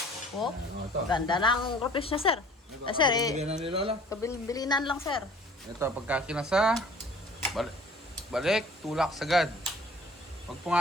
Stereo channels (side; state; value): both; normal; correlation 0.51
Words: Oh, Ano ito? ganda ng groupings niya, sir. Sir, Bigyan na ni Lola. kabilinan lang, sir. Ito, pagka kinasa, balik, tulak sagad. Pag